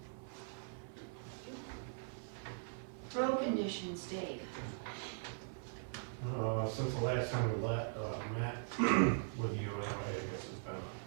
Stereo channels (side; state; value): left; silent; 50 dB below the other